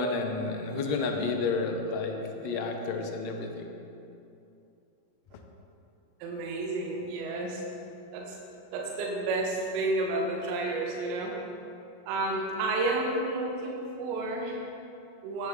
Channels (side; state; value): left; late; 39 ms